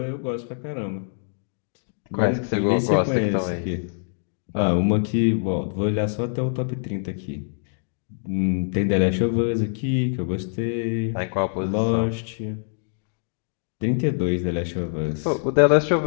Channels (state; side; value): silent; right; digital silence